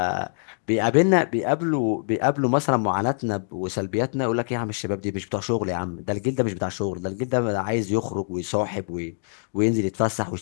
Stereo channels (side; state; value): right; silent; digital silence